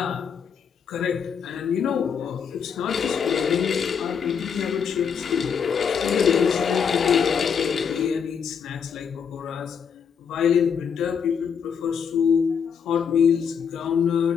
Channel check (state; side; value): quieter; right; 6.9 dB